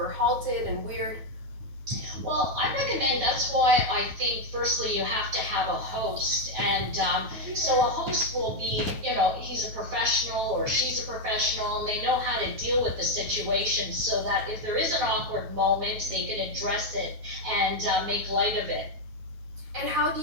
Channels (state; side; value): late; left; 9.3 ms